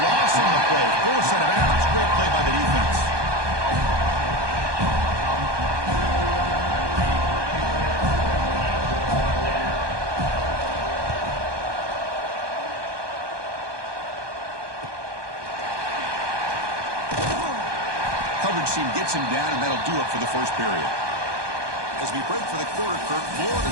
loss on the play. Force out of bounds. Great play by the defense. Coverage team gets him down, and that'll do it for the first period. As we break for the quarter, Kirk, Florida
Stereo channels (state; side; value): late; left; 1.2 ms